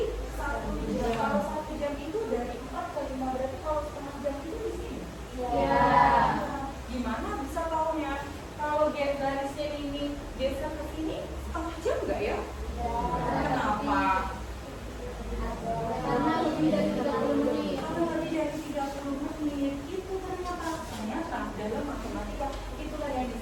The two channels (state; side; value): identical; both; correlation 1.00